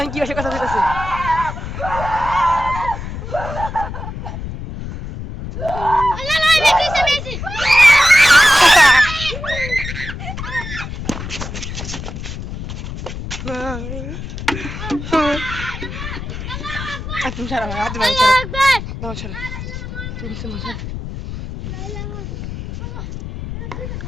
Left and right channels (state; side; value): noise; left; rumble, 8 dB below the sound